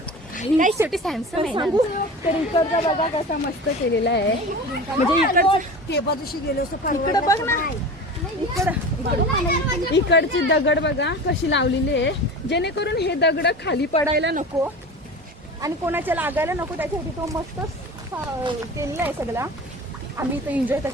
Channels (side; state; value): both; normal; correlation 0.33